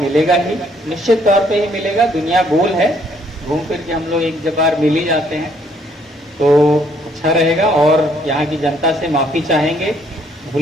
ही, निश्चित तौर पे ही मिलेगा। दुनिया गोल है, घूम फिर के हम लोग एक बार मिल ही जाते हैं, तो अच्छा रहेगा। और यहाँ की जनता से माफ़ी चाहेंगे,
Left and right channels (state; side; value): normal; both; correlation 0.66